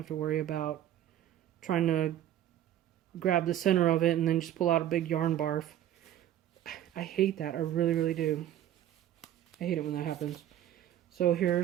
to worry about trying to grab the center of it and then just pull out a big yarn barf. I hate that. I really, really do. I hate it when that happens. So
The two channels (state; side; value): quieter; left; 11.7 dB